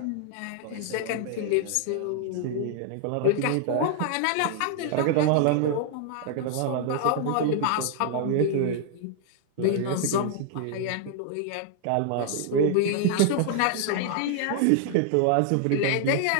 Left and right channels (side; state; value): both; different; correlation -0.01